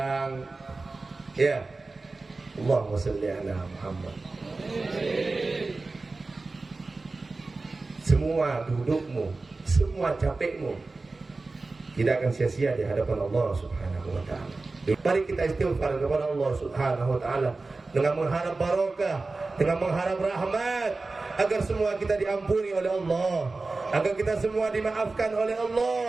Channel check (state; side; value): quieter; left; 3.6 dB